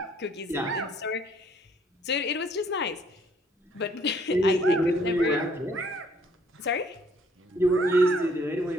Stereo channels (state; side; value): normal; both; correlation 0.63